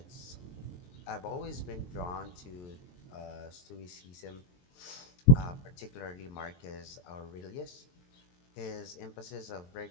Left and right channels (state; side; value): late; right; 22 ms